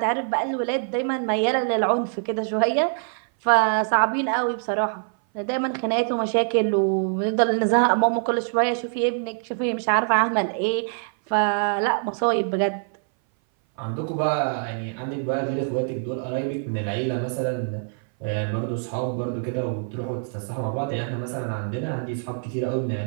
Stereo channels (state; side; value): silent; left; 59 dB below the other